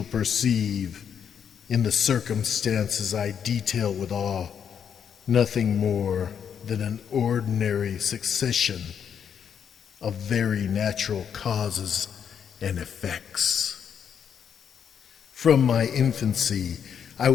perceive, in the circumstances I detail with awe, nothing more than an ordinary succession of very natural causes and effects. From my infancy, I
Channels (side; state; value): right; quieter; 7.9 dB